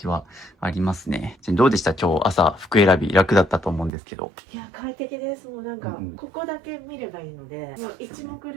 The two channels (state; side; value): drops out; left; at 3.9 s